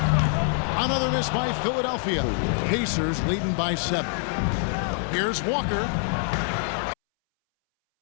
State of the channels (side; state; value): right; silent; 62 dB below the other